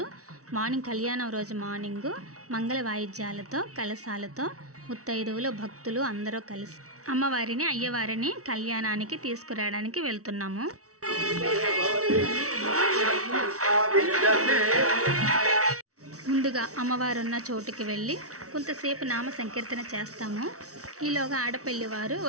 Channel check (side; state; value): left; late; 0.65 ms